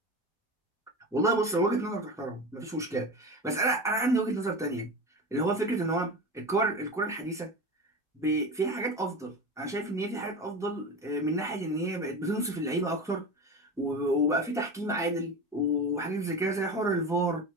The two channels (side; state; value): both; normal; correlation 0.27